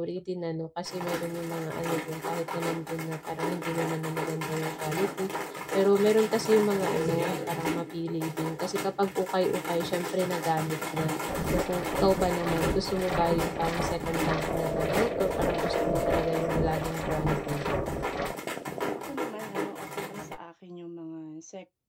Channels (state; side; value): identical; both; correlation 1.00